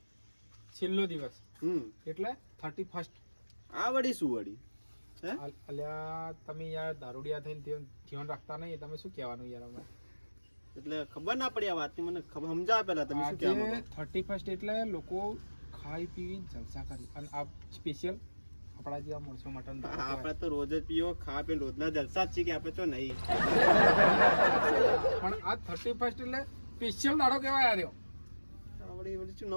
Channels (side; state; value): both; inverted; correlation -1.00